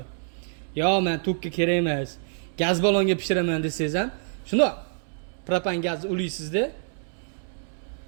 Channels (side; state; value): left; silent; 60 dB below the other